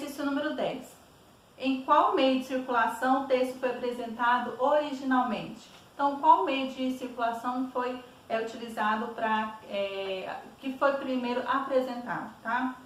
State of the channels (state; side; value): identical; both; correlation 1.00